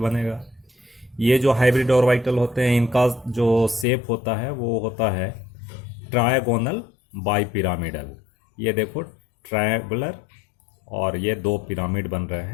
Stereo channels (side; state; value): right; drops out; at 3.9 s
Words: ये जो हाइब्रिड ऑर्बिटल होते हैं इनका जो शेप होता है वो होता है ट्रायगोनल बाई पिरामिडल। ये देखो ट्रायंगुलर और ये 2 पिरामिड बन रहे